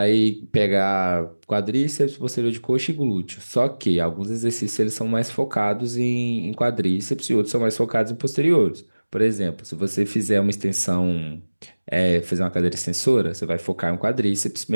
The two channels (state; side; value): inverted; both; correlation -1.00